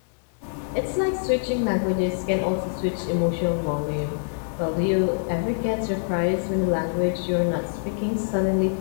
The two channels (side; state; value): right; silent; digital silence